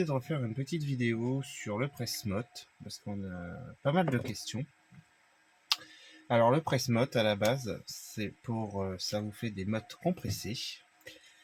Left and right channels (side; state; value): both; identical; correlation 1.00